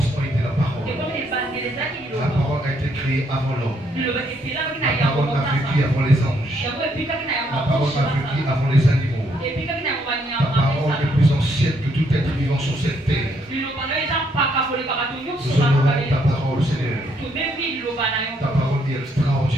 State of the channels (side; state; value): both; normal; correlation 0.72